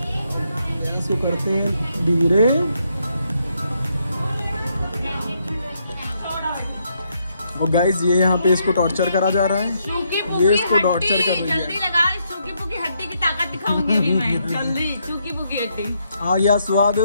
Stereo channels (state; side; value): inverted; both; correlation -0.76